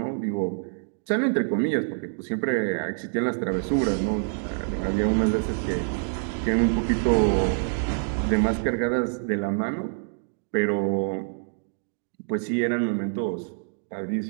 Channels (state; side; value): silent; left; digital silence